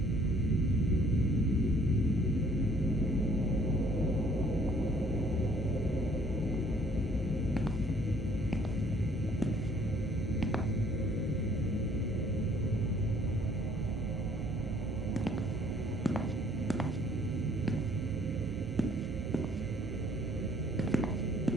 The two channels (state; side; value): normal; both; correlation 0.59